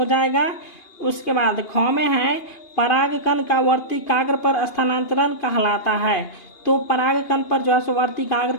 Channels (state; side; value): late; right; 2.8 ms